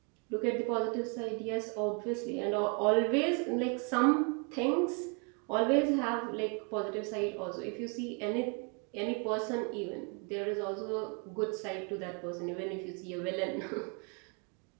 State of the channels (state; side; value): quieter; left; 36.2 dB